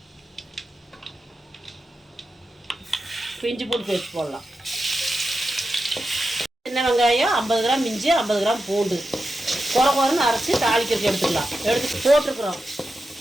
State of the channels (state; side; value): normal; both; correlation 0.90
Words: இஞ்சி பூண்டு பேஸ்ட் போடலாம். சின்ன வெங்காயம் 50 கிராம், இஞ்சி 50 கிராம், பூண்டு குறைன்னு அரைச்சி தாளிக்கிறதுக்கு எடுத்துக்கலாம். எடுத்து போட்டிருக்குறோம்.